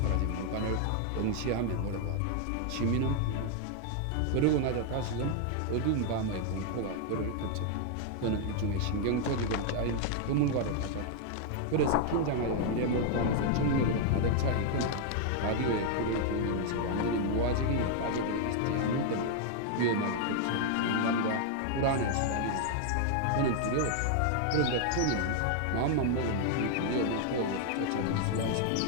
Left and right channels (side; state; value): both; different; correlation 0.00